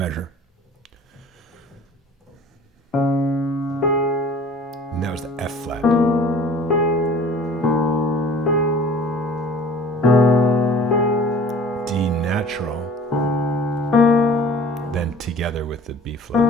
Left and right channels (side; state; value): both; normal; correlation 0.47